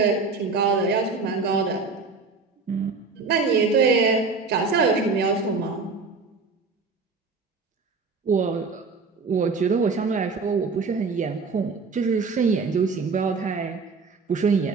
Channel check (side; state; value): left; quieter; 4.4 dB